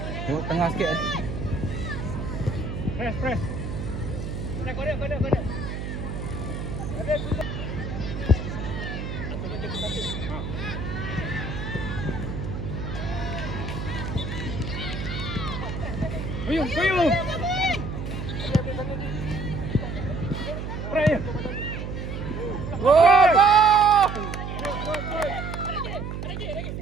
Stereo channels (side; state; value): right; noise; hum, 5 dB below the sound